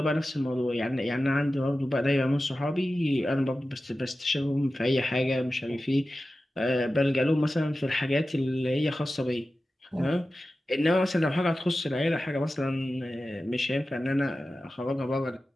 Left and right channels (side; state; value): both; normal; correlation 0.94